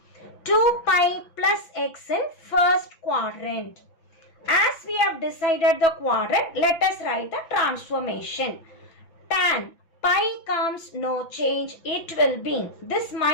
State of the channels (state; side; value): late; right; 5.9 ms